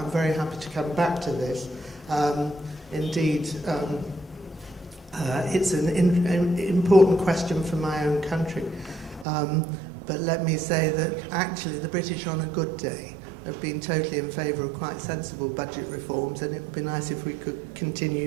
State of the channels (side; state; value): left; drops out; at 9.2 s